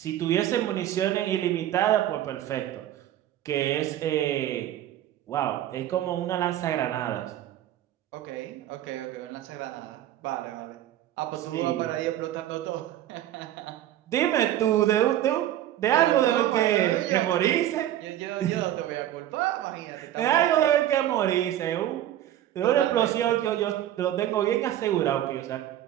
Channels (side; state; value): left; quieter; 12.4 dB